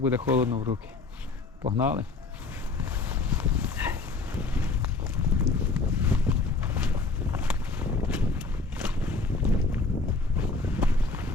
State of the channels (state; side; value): quieter; right; 3.9 dB